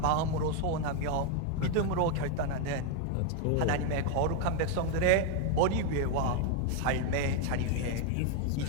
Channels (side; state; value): both; different; correlation 0.01